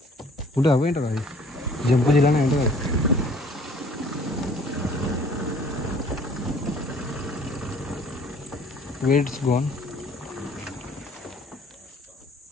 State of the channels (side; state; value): both; normal; correlation 0.54